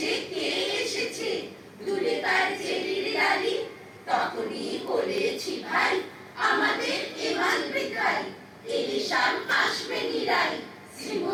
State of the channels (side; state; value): both; identical; correlation 1.00